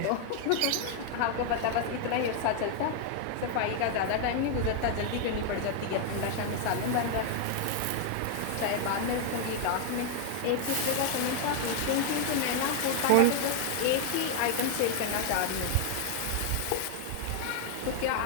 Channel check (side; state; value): both; different; correlation 0.00